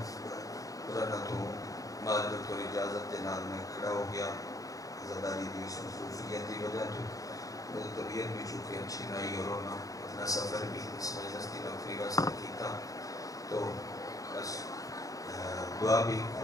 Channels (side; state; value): right; late; 0.17 ms